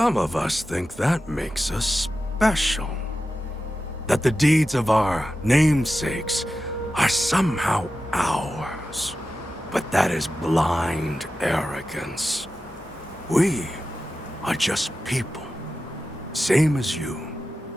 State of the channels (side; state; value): both; normal; correlation 0.92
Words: of us think that makes us special. That the deeds of our namesakes are somehow ours. But that is blind arrogance. We are just people. Same as you.